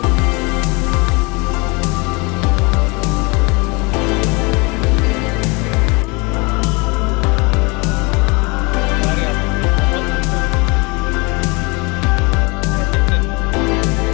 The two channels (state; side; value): quieter; right; 27.9 dB